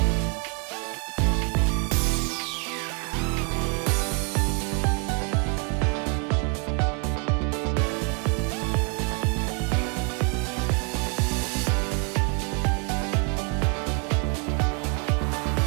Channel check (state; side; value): quieter; left; 34.9 dB